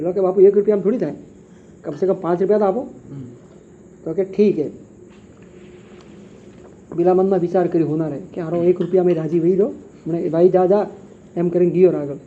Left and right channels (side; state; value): both; identical; correlation 1.00